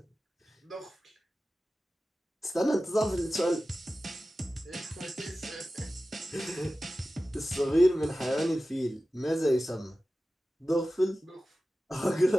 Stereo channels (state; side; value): normal; both; correlation 0.95